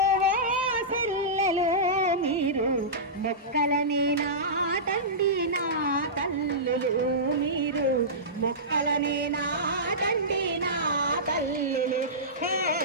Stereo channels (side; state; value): both; normal; correlation -0.18